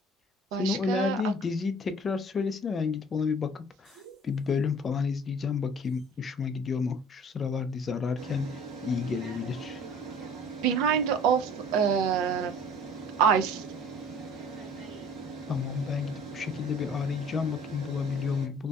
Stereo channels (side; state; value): both; normal; correlation 0.49